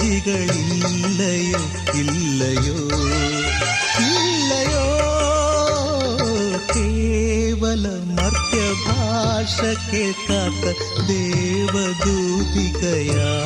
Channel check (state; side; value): identical; both; correlation 1.00